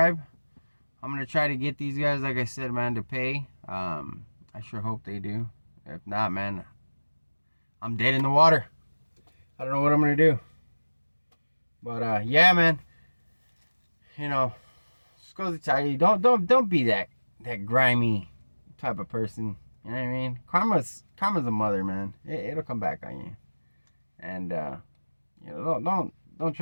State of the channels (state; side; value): inverted; both; correlation -1.00